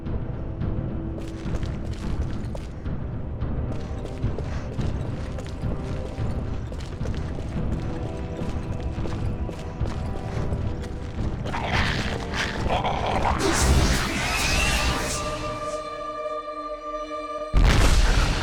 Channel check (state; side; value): identical; both; correlation 1.00